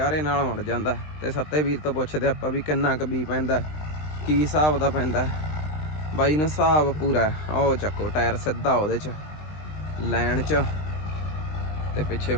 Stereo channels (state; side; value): late; right; 20 ms